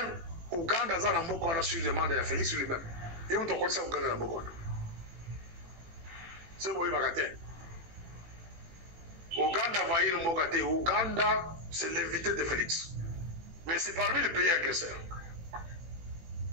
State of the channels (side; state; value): left; late; 18 ms